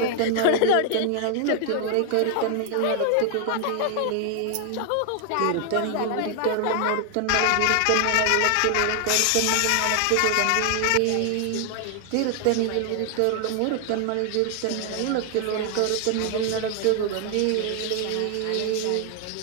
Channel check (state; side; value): different; both; correlation 0.00